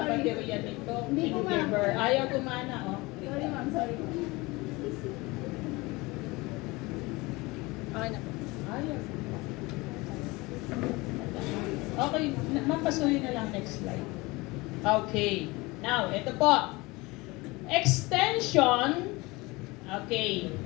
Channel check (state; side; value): quieter; right; 23.2 dB